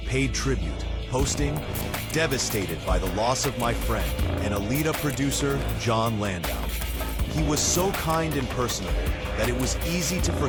paid tribute, posting, "Devastated by the loss of my friend and Alita producer Jon Landau. He was so kind and personable that it was easy to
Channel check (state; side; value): identical; both; correlation 1.00